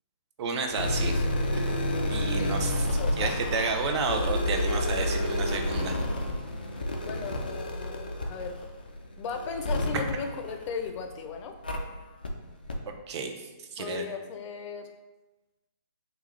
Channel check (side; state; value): both; inverted; correlation -0.58